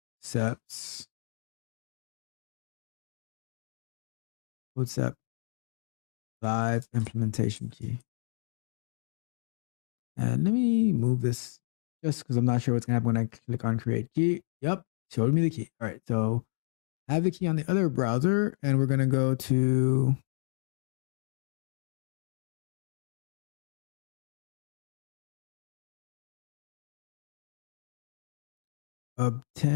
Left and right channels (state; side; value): silent; right; digital silence